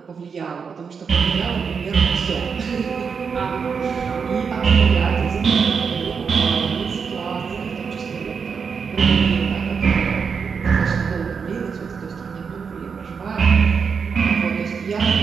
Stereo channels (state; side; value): quieter; left; 5.9 dB